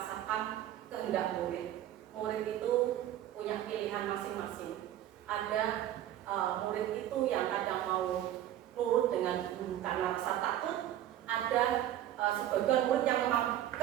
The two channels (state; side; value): quieter; left; 12.3 dB